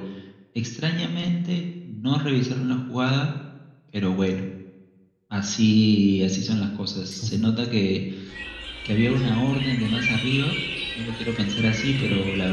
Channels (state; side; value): identical; both; correlation 1.00